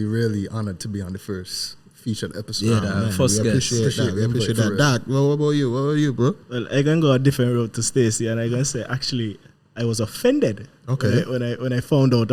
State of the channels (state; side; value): identical; both; correlation 1.00